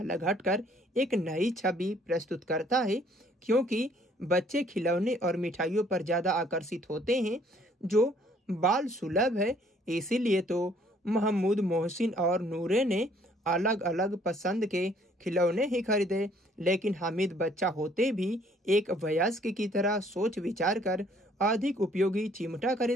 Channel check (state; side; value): normal; both; correlation 0.61